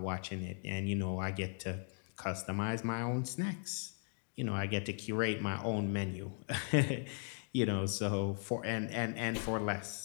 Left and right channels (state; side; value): silent; right; 53 dB below the other